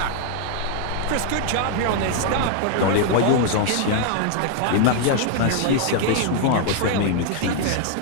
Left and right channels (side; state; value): both; different; correlation 0.00